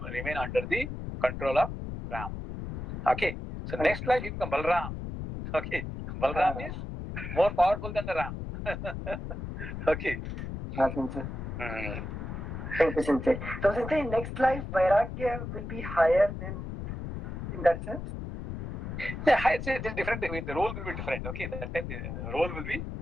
remain under the control of Ram. Okay. So next life he becomes Balram. Okay. Balram is more powerful than the Ram. Okay. Thank you, Sensei. So, Sensei, in next life, Vairagya will be higher than, in that sense? Yeah, higher, it is different. The role will be different. Okay, that time the role will be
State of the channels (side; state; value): left; noise; rumble, 6 dB below the sound